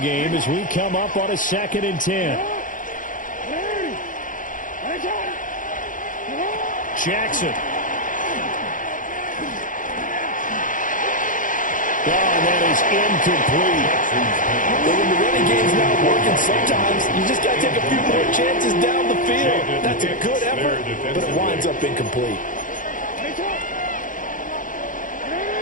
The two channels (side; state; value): right; late; 0.38 ms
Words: as we come up on a 2nd and 10. Jackson. Oh, and that is incomplete. But when the running game's not working, sometimes you just got to take a few more chances down the field. That's a good effort, but it winds up incomplete.